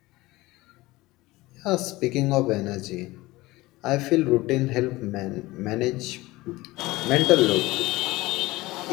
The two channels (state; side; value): quieter; right; 19.7 dB